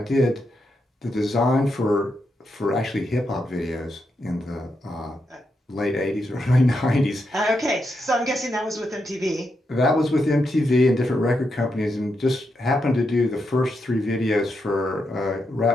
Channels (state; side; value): normal; both; correlation 0.83